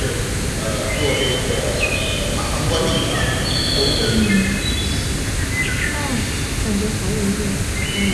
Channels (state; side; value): identical; both; correlation 1.00